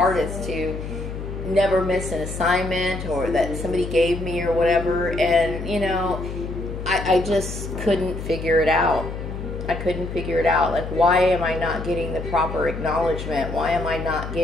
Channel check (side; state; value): left; noise; hum, 7 dB below the sound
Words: to never miss an assignment or that somebody gave me or whatever. And, you know, I just couldn't figure it out. I couldn't figure it out. Like, why am I not getting the proper acknowledgement? Why am I not